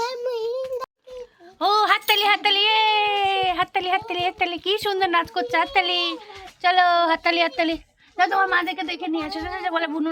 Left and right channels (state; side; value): identical; both; correlation 1.00